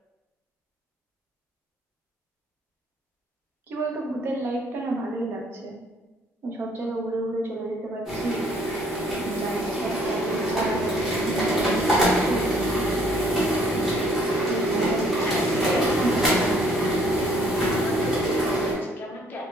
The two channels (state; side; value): normal; both; correlation 0.63